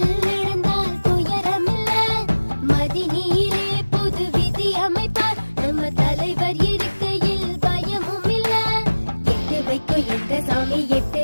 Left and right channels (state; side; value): inverted; both; correlation -1.00